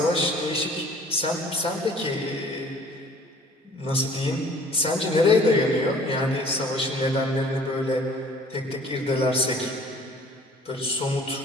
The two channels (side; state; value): both; normal; correlation 0.52